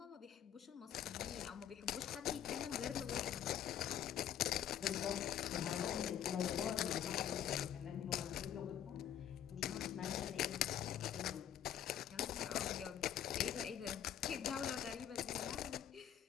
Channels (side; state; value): right; quieter; 10.0 dB